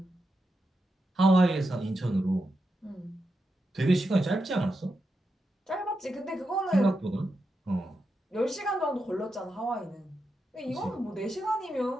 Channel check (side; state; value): both; normal; correlation 0.86